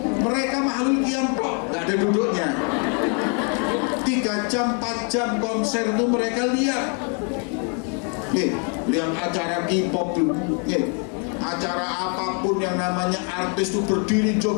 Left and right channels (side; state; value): right; quieter; 39.2 dB